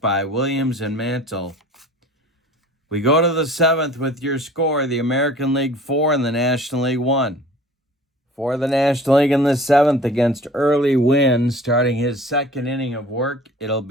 Williams and Mantle. We go to the 7th with your score, the American League 4 and the National League 1. For the National League in the 7th against Early Wynn, starting his 2nd inning of work, it'll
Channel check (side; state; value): both; normal; correlation 0.46